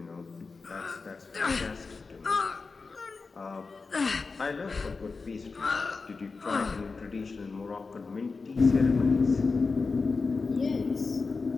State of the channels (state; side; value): quieter; right; 4.3 dB